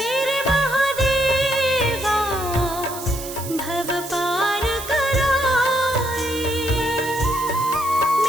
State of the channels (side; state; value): right; noise; hiss, 11 dB below the sound